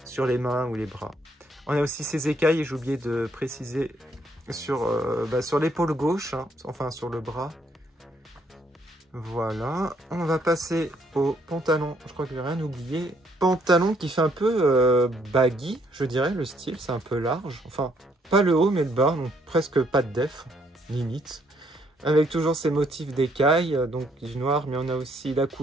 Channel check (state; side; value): normal; both; correlation 0.69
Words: sur les mains ou les bras. On a aussi ces écailles, et j'ai oublié de préciser sur l'épaule gauche, hein, enfin sur le bras. Voilà, on va passer au pantalon. Je crois que j'ai rien oublié. Pantalon qui fait un peu baggy, je dirais, le style, c'est un peu large. Enfin, pas le haut, mais le bas, donc presque pas de def, limite. Avec toujours ces motifs d'écailles, donc du noir, mais on a aussi la